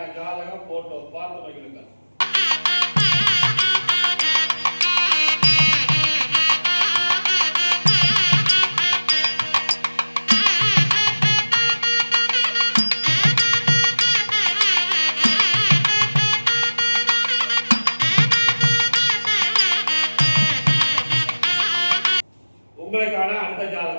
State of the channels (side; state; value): both; inverted; correlation -1.00